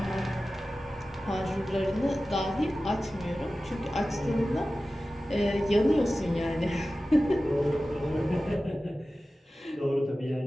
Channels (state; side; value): normal; both; correlation 0.95